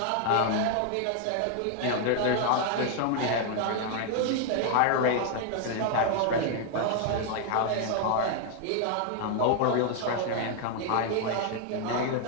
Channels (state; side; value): different; both; correlation 0.00